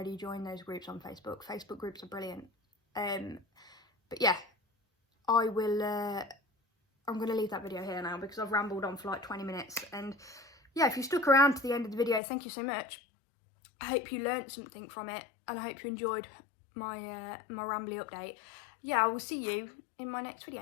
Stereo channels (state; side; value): drops out; right; at 12.2 s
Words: joined those groups on Facebook. Facebook groups are brilliant. But yeah, I'm going to leave that video here now because I've rambled on for like 20 minutes. And yeah, if you stuck around to the end of the video, thank you so much. I hope you learned something from it, and I hope you enjoyed my my rambly update. Yeah, I will see you in my next